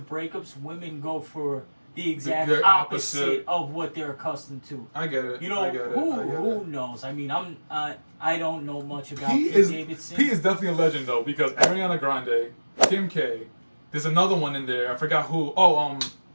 breakups, women go for the exact opposite of what they're accustomed to. I get it. Who knows? I mean, I don't know much about Pete Davidson. Pete is definitely a legend though because Ariana Grande, Kim K, there's another one in there. I forgot who.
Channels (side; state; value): both; inverted; correlation -1.00